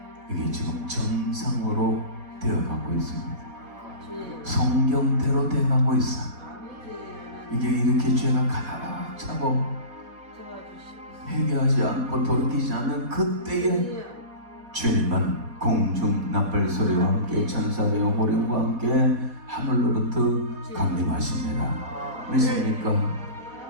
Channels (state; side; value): late; left; 4.1 ms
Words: 이게 지금 정상으로 되어가고 있습니다. 성경대로 되어가고 있어. 이게 이렇게 죄가 가득 차고 회개하지 않고 돌이키지 않는 그때에 주님은 공중 나팔 소리와 함께 천사들의 호령과 함께 하늘로부터 강림하십니다. 믿습니까?